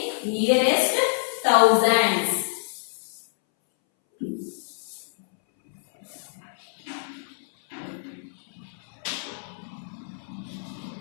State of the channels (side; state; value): right; silent; 61 dB below the other